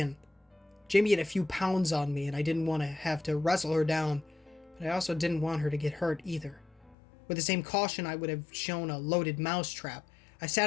Jamie had a few pounds on me, and I didn't want to have to wrestle her down, but I also didn't want her to get hurt either. With the same caution I would have shown a loaded mousetrap, I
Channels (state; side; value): drops out; right; at 7.0 s